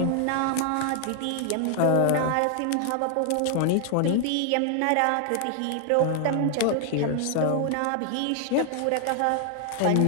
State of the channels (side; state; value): both; different; correlation 0.00